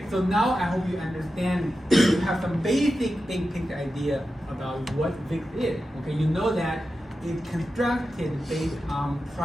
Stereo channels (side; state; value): both; normal; correlation 0.91